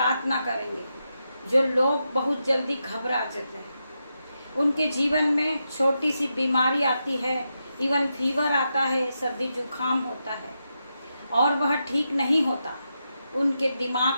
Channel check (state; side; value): inverted; both; correlation -0.86